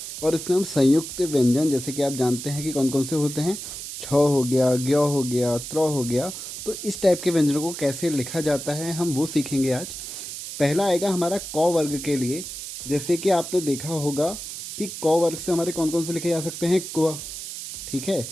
और इसमें हम संयुक्त व्यंजन, जैसे कि आप जानते हैं कि कौन कौन से होते हैं, छ हो गया, ज्ञ हो गया, त्र हो गया, तो इस टाइप के व्यंजनों को कैसे लिखा जाता है हम वो सीखेंगे आज। पहला आएगा हमारा क वर्ग के लिए। जैसे कि आपने देखा होगा कि क वर्ग से हमारे कौन कौन से लिखे जा सकते हैं, क्व, ठीक है,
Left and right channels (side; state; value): right; noise; hiss, 9 dB below the sound